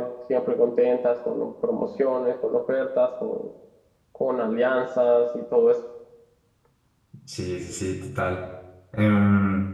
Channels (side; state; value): both; identical; correlation 1.00